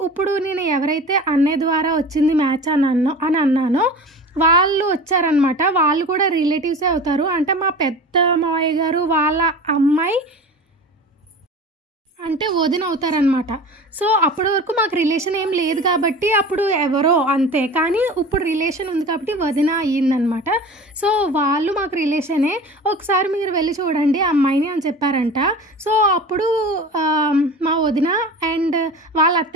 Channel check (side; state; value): both; normal; correlation 0.36